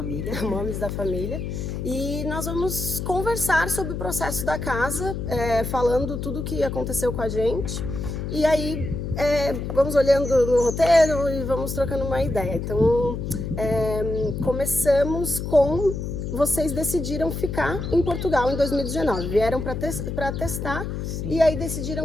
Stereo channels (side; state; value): left; noise; hum, 4 dB below the sound